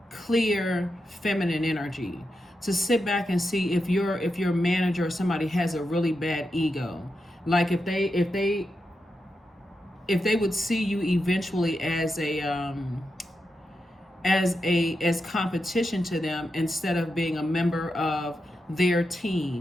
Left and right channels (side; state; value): both; normal; correlation 0.87